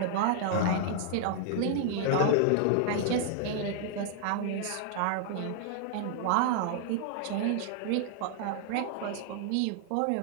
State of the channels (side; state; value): both; different; correlation -0.01